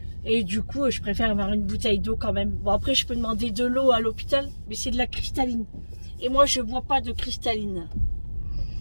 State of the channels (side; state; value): both; inverted; correlation -1.00